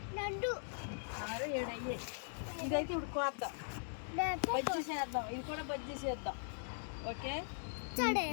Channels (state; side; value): silent; right; digital silence